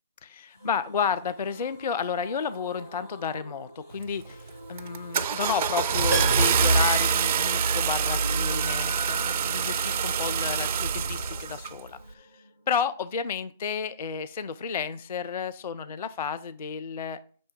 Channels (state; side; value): inverted; both; correlation -0.43